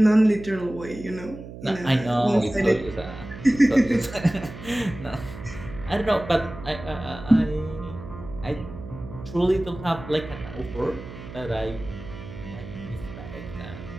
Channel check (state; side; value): noise; right; hum, 13 dB below the sound